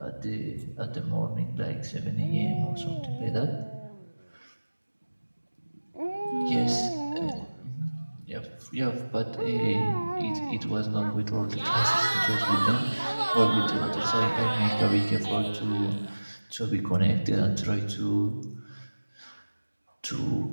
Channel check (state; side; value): inverted; both; correlation -1.00